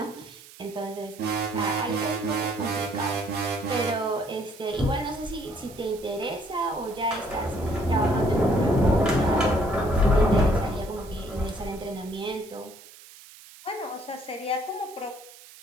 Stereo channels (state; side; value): noise; right; hiss, 20 dB below the sound